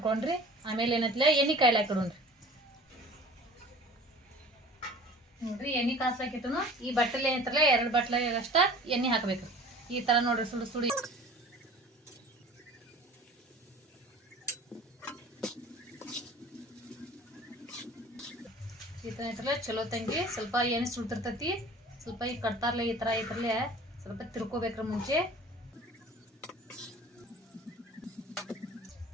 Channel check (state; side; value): normal; both; correlation 0.44